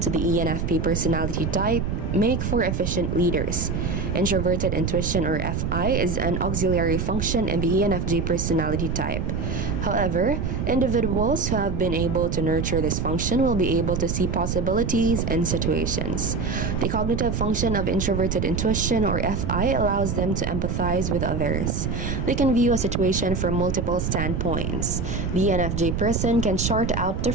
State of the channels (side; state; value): right; noise; rumble, 1 dB below the sound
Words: to the ENFP personality type make for efficient leaders. Introverted intuition, or FI, is an auxiliary function in the ENFJ personality type. However, individuals who have been able to nurture this function will be able to see possibilities in situations. The cognitive function of introverted intuition, or FI, allows them to empathize with others. They can view a situation from multiple standpoints. The ENFJ person can chart out